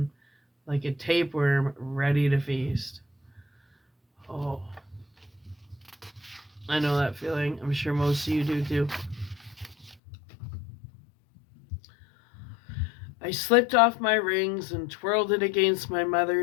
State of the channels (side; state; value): right; drops out; at 10.0 s